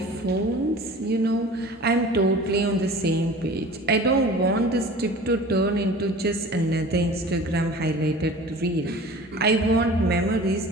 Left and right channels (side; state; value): both; normal; correlation 0.41